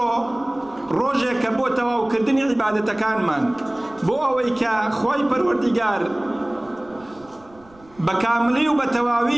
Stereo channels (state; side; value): noise; right; rumble, 27 dB below the sound